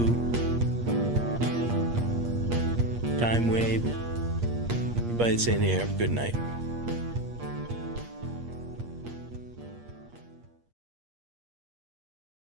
Time Wave. Everybody that's in here, have a good night.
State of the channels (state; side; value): late; left; 8.5 ms